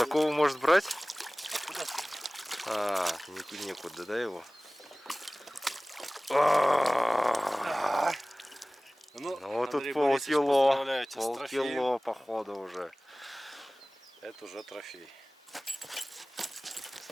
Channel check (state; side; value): normal; both; correlation 0.98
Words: такого может брать? А куда ты? А, некуда, да, его? Ну, Ну вот Андрей тут Борисович, полкило. поздравляю тебя с трофеем. Полкило, походу, уже. Это уже трофей.